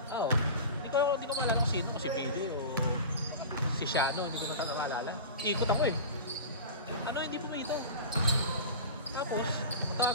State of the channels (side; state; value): both; inverted; correlation -0.33